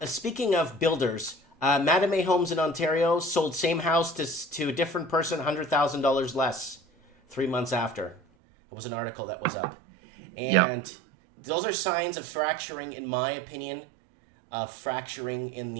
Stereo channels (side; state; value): left; drops out; at 8.2 s